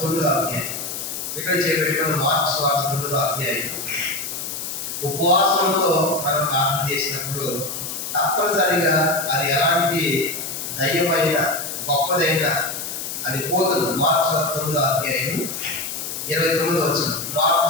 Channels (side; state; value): left; noise; hiss, 6 dB below the sound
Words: 9వ అధ్యాయం ఇక్కడ చేపెట్టుకున్న మార్కు సువార్త 9వ అధ్యాయం. ఉపవాసంతో మనం ప్రార్థన చేసినప్పుడు తప్పనిసరిగా అది ఎలాంటి దయ్యమైన గొప్పదైనా అది పోతుంది. మార్కు సువార్త 9వ అధ్యాయం 29వ వచనం. మార్కు